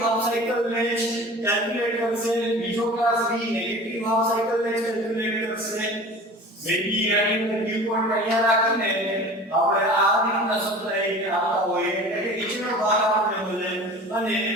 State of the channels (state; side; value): normal; both; correlation 0.40